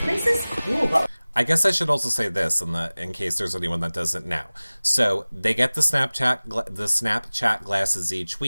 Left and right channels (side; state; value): both; inverted; correlation -1.00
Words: is cool, but I guess I should also say this in case there's anyone that doesn't know. So they get the Snapchat glasses each